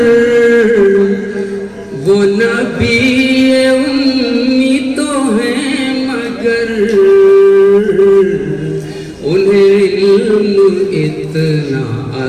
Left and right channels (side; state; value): both; identical; correlation 1.00